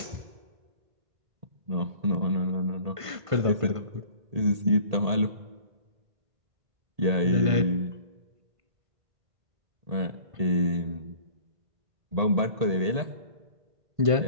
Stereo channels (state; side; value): late; left; 1.5 ms